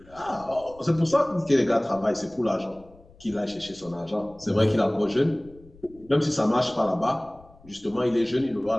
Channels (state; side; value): noise; left; rumble, 25 dB below the sound